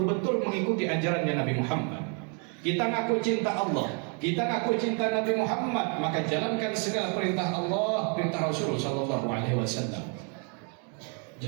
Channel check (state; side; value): quieter; left; 38.7 dB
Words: mengikuti ajarannya Nabi Muhammad. Kita ngaku cinta Allah, kita ngaku cinta Nabi Muhammad, maka jalankan segala perintah Allah, perintah Rasul sallallahu alaihi wasallam.